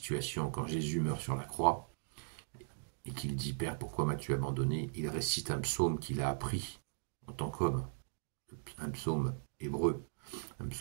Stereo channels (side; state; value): left; silent; digital silence